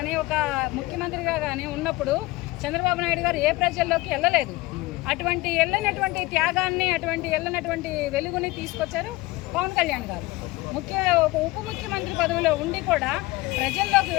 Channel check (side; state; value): right; quieter; 20.6 dB